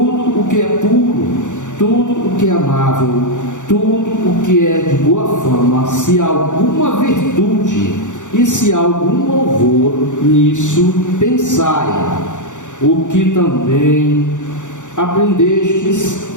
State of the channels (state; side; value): late; right; 0.86 ms